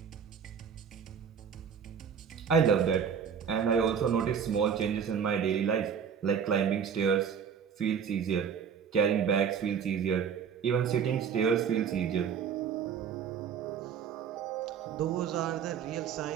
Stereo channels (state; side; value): quieter; left; 7.3 dB